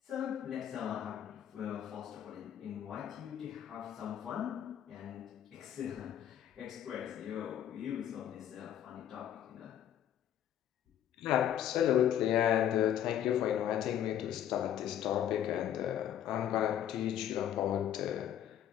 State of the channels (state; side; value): quieter; right; 10.5 dB